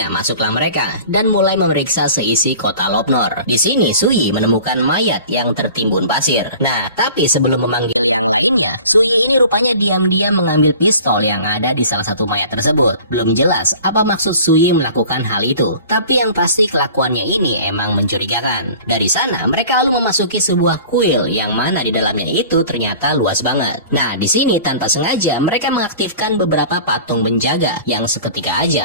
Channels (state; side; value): inverted; both; correlation -0.44